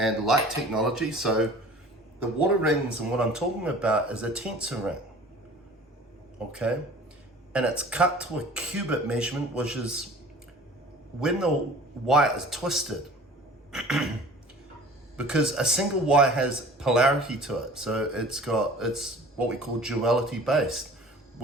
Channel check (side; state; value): both; normal; correlation 0.45